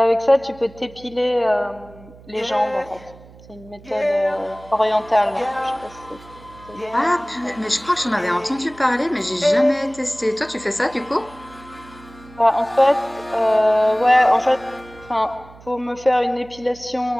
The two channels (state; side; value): noise; right; hum, 22 dB below the sound